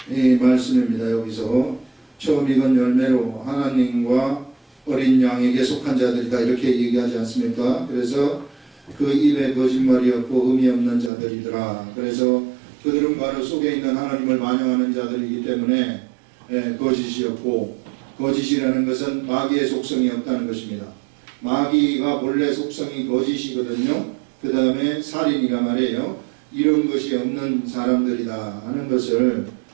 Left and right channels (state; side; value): drops out; left; at 11.1 s